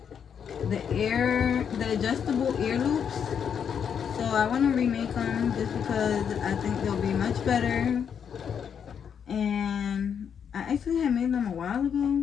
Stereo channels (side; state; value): right; quieter; 7.6 dB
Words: the adjustable ear loops. So I want to remake them just because I think they'll be much better. And I actually had made them a while